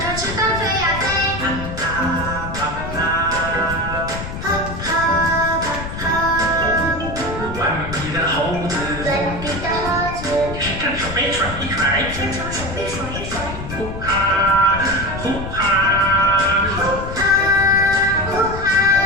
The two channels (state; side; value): noise; left; rumble, 8 dB below the sound